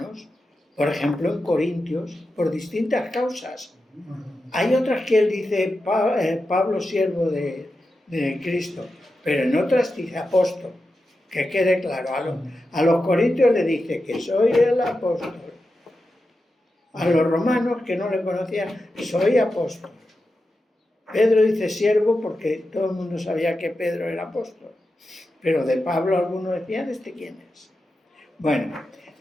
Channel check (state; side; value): normal; both; correlation 0.90